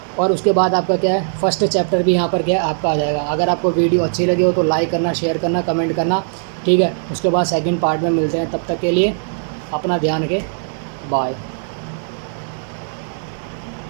और उसके बाद आपका क्या है फर्स्ट चैप्टर भी यहाँ पर क्या है आपका आ जाएगा। अगर आपको वीडियो अच्छी लगी हो तो लाइक करना, शेयर करना, कमेंट करना। ठीक है, उसके बाद सेकंड पार्ट में मिलते हैं, तब तक के लिए अपना ध्यान रखें, बाय।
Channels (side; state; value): left; silent; digital silence